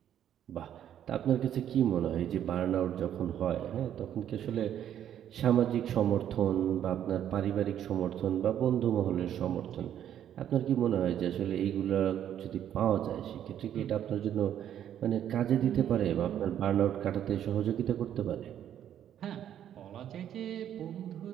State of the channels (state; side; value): quieter; left; 10.3 dB